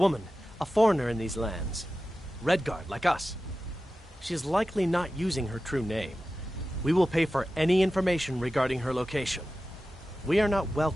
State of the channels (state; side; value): normal; both; correlation 0.94